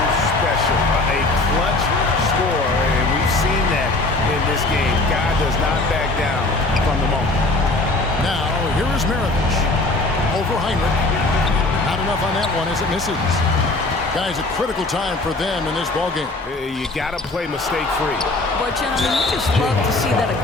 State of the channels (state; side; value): quieter; right; 3.0 dB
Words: special. A clutch scorer, and we've seen that in this game. God does not back down from the moment. Now, here is Maravich. Over Heinrich. Not enough on that one as it misses. Guys, a critical time for them in this ballgame. You got to play mistake-free. But, gentlemen, you just love to see that